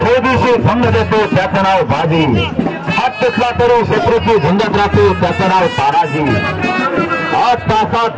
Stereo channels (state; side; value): identical; both; correlation 1.00